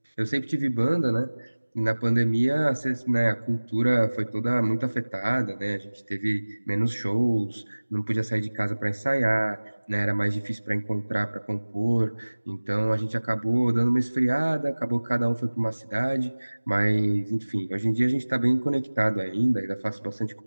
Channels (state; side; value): inverted; both; correlation -1.00